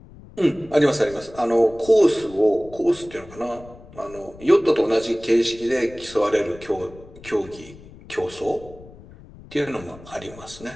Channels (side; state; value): left; noise; rumble, 20 dB below the sound